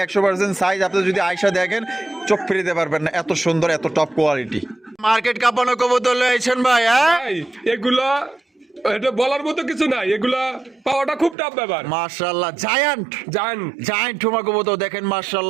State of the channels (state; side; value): drops out; left; at 11.4 s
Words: 100% সাইজ। আপনি যদি আয়সা দেখেন চোখ ফিরিতে পারবেন না, এত সুন্দর এত টপ কোয়ালিটি। মার্কেট কাঁপানো কবুতর লয়েছেন ভাই। হ্যাঁ এগুলা এটা বলার মতো কিছু নাই, এগুলা পাওয়াটা খুব টাফ ব্যাপার। মাশাআল্লাহ জায়ান্ট জায়ান্ট ঠোমা কবুতর দেখেন